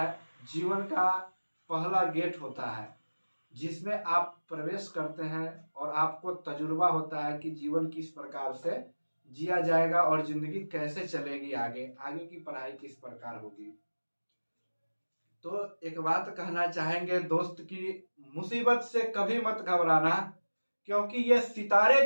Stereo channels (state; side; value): inverted; both; correlation -1.00